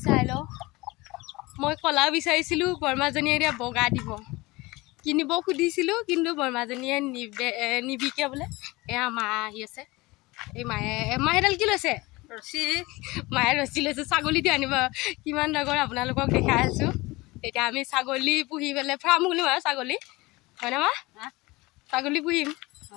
চাই ল মই কলা বিচাৰিছিলো বৰমাজনীয়ে এতিয়া বগা দিব কিনিব খুদিছিলো কিন্তু বৰমাজনীয়ে নিবিকে বলে এয়া মা আহি আছে এই মাহেডাল কি লৈছে ৰছী মায়ে ৰছী লৈছে ছাগলীটো আনিব কিমান ডাঙৰ আপোনালোকক দেখাই আছো এতিয়া আমি ছাগলী পুহি পেলাই ফাৰ্ম খুলিম আৰু ছাগলী হয়নে মা ছাগলী পুহিম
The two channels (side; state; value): right; quieter; 22.0 dB